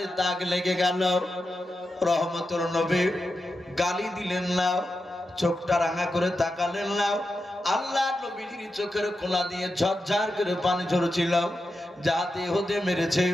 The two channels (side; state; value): both; normal; correlation 0.89